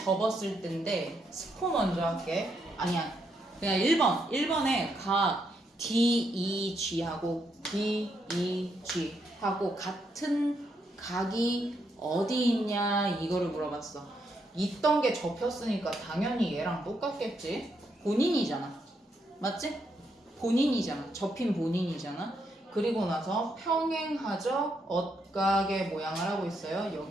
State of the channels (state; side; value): normal; both; correlation 0.78